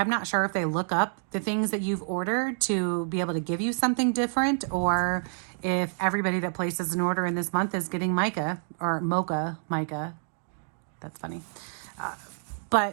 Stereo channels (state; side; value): silent; left; digital silence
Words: not sure if they look up the things that you've ordered to be able to give you something different, or if everybody that places an order in this month is getting mica or mocha mica. That's funny.